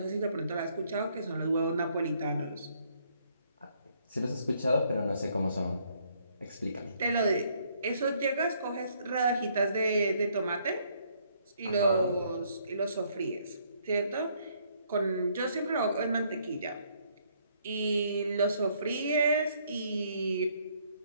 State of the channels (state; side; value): inverted; both; correlation -0.68